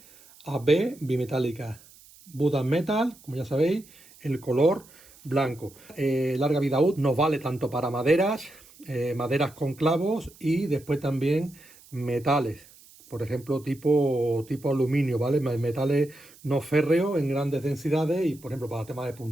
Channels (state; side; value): noise; right; hiss, 24 dB below the sound